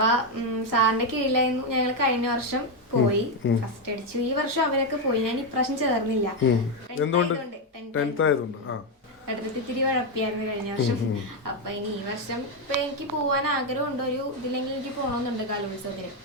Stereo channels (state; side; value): normal; both; correlation 0.05